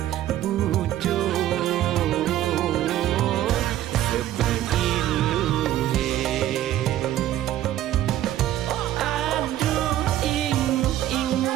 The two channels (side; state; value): left; quieter; 13.0 dB